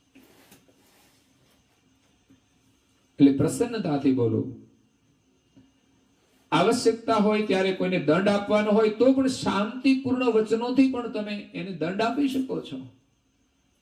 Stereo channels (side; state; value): both; identical; correlation 1.00